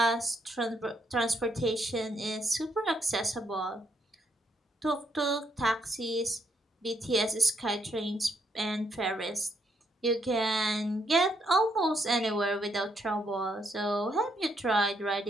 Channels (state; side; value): normal; both; correlation 0.75